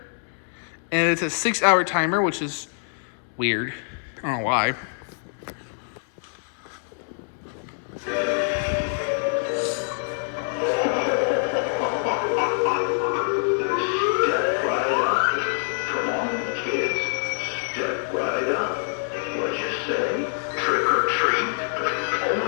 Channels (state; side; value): silent; right; digital silence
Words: And it's a 6-hour timer, which is weird. I don't know why. Say, trick or treat.